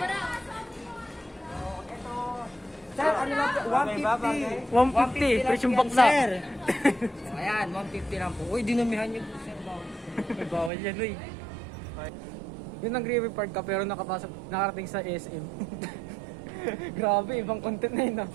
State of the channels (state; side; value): drops out; left; at 10.7 s